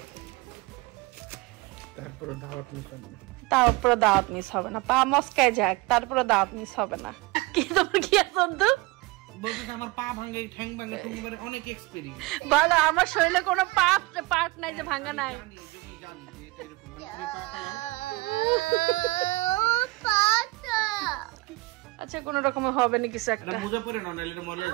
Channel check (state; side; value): quieter; left; 22.4 dB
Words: তারপরে দাওয়াত মিস হবে না, তারপরে দাওয়াত মিস হবে না। পা মচকায় যাক, তারপরে দাওয়াত মিস হবে না। কি তোমার কি আছে তো? বলতে আমার পা ভাঙে, ঠ্যাং ভাঙে, তুমি মানে অনেক এক্সপেরিয়েন্স। বলো আমার শরীরে কোনো পার্ট নাই যে ভাঙা নাই। আচ্ছা কোন রকমে হবে না কিছু একটা। মোজা পরে না, নাইলে মরে